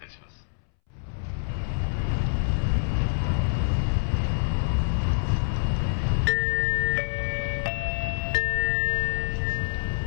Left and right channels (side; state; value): right; silent; 61 dB below the other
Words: します。